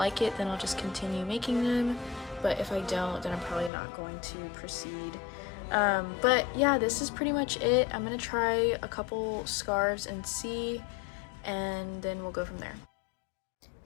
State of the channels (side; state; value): right; drops out; at 3.7 s